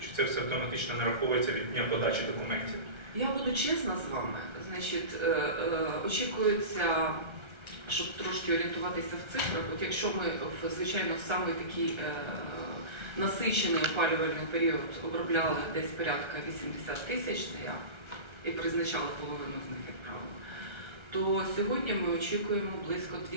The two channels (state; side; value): late; left; 1.3 ms